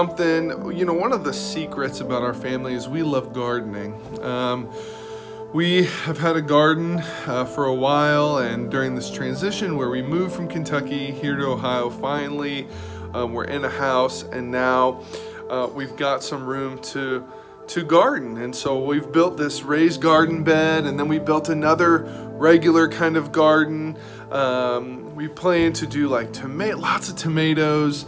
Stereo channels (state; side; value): identical; both; correlation 1.00